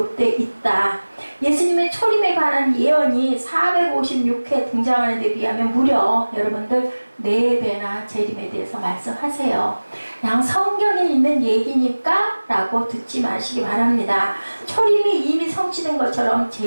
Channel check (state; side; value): inverted; both; correlation -1.00